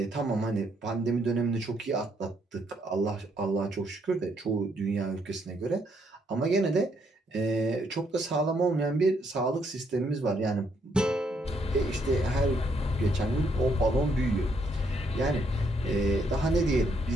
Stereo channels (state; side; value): normal; both; correlation 0.72